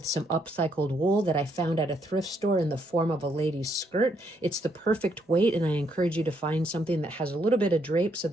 some upcycled wool that I found at a thrift store in the form of a lady's skirt. It's the perfect weight, and I encourage you to find something that has a little bit of drape so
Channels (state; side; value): normal; both; correlation 0.73